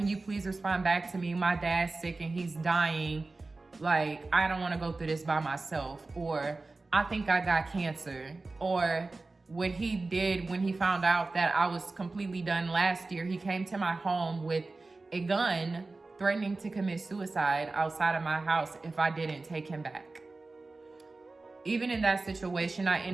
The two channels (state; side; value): quieter; left; 3.4 dB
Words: you please respond back to me? My dad's sick and he's dying. Like, I don't want to go through this by myself. Or I think I got cancer. Or what he did when he found out that I was completely done last year, he came to my home with a gun threatening to commit suicide outside of my house if I didn't take him back. Even in that situation, I